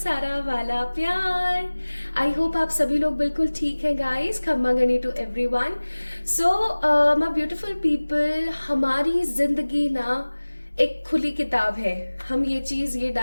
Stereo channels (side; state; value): both; inverted; correlation -1.00